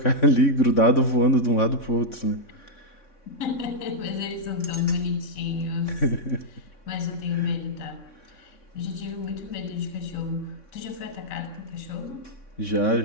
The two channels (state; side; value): late; right; 3.6 ms